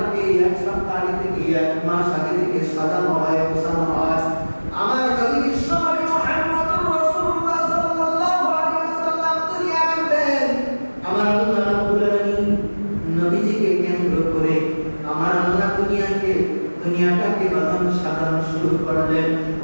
এক সপ্তাহ আগে থেকে এক মাস আগে থেকে সাজানো হয় গোছানো হয় আমার নবী বিশ্বনবী মুহাম্মদুর রাসূলুল্লাহ সাল্লাল্লাহু আলাইহি ওয়াসাল্লাম দুনিয়ায় আসবেন আমার আল্লাহ রাব্বুল আলামিন নবীজিকে কেন্দ্র করে আমার আল্লাহ দুনিয়াটাকে বাজান সাজানো শুরু করলেন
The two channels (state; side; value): inverted; both; correlation -1.00